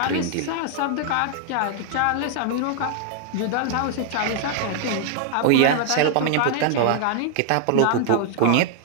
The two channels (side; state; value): both; different; correlation 0.00